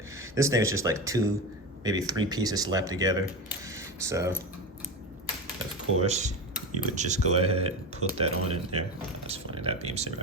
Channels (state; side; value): normal; both; correlation 0.22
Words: this thing is just like two, maybe three pieces slapped together. So, of course, you would just go ahead and put that on in there. Oh, that's funny, that beam saber